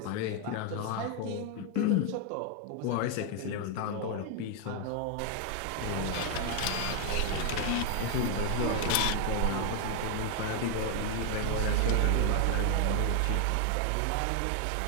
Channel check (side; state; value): both; different; correlation 0.01